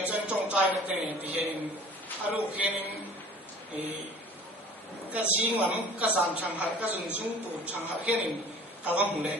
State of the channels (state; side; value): normal; both; correlation 0.45